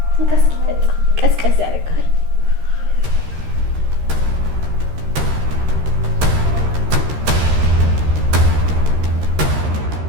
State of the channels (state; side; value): late; left; 13 ms